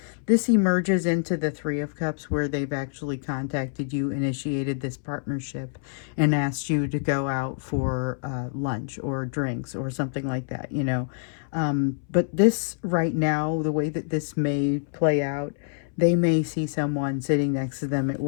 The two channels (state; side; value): silent; right; 61 dB below the other